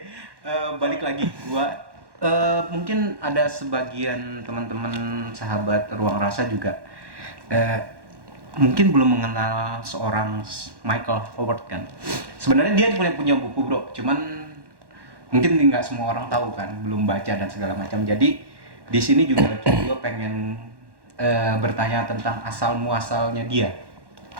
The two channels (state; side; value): late; left; 1.1 ms